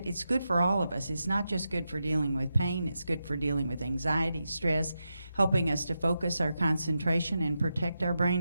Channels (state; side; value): inverted; both; correlation -0.88